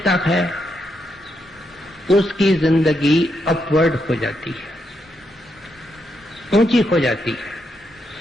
है उसकी जिंदगी अपवर्ड हो जाती है, ऊंची हो जाती है।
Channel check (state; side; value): normal; both; correlation 0.81